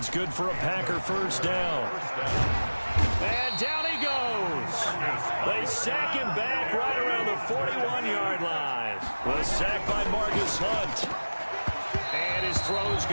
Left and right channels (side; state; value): both; inverted; correlation -1.00